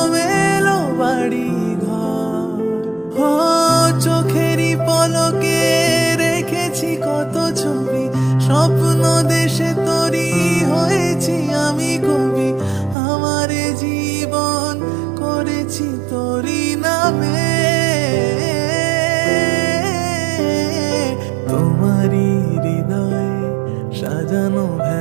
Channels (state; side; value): drops out; left; at 13.0 s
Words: মেলো বাড়ি ঘর। ও চোখেরই পলকে রেখেছি কত ছবি, স্বপ্ন দেশে তরি হয়েছি আমি কবি। আমার এ জীবন করেছি তোরি নামে, তোমারই হৃদয়ে সাজানো